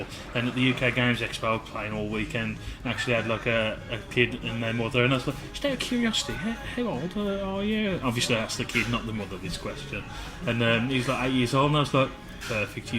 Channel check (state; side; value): identical; both; correlation 1.00